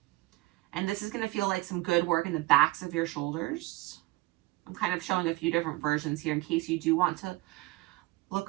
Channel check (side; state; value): left; quieter; 20.5 dB